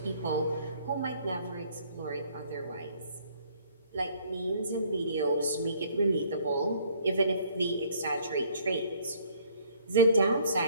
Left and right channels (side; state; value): both; inverted; correlation -0.60